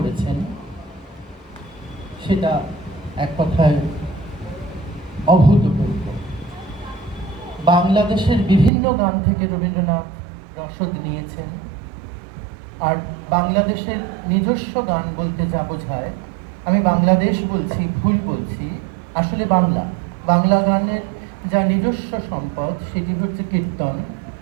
সেটা এক কথায় অভূতপূর্ব। বাংলাদেশের বিভিন্ন গান থেকে রবীন্দ্রনাথ রসদ নিয়েছেন। আর বাংলাদেশের নিজস্ব গান বলতে যা বোঝায়, আমি বাংলাদেশ বলছি, ভুল বলছি, আসলে বাংলা গানের যা নিজস্ব সম্পদ সেটি হচ্ছে কীর্তন।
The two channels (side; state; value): left; drops out; at 8.7 s